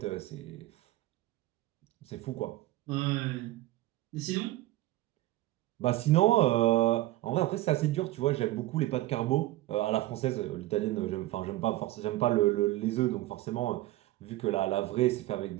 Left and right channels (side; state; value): left; quieter; 16.8 dB